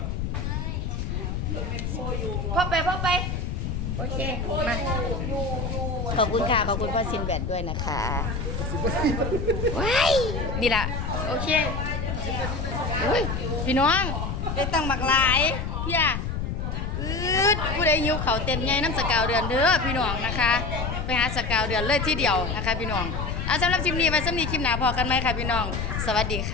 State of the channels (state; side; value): noise; left; rumble, 3 dB below the sound